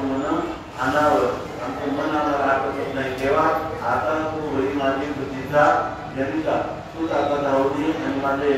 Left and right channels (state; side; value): identical; both; correlation 1.00